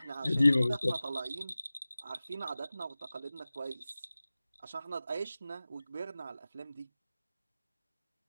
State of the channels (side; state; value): both; inverted; correlation -0.96